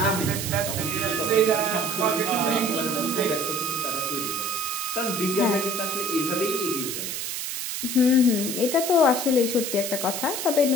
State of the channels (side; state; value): right; noise; hiss, 4 dB below the sound